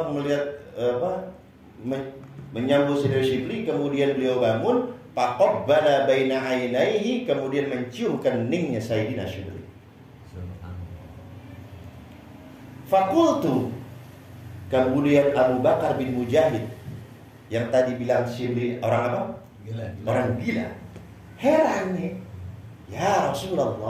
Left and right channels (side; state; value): both; identical; correlation 1.00